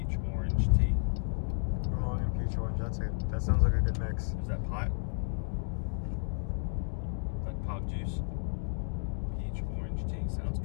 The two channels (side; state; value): right; silent; digital silence